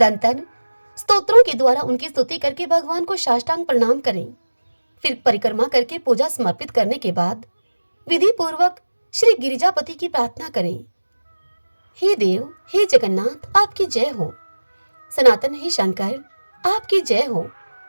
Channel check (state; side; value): inverted; both; correlation -1.00